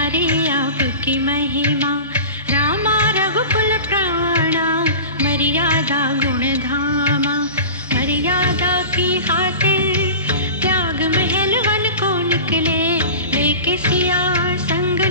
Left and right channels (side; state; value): both; inverted; correlation -0.34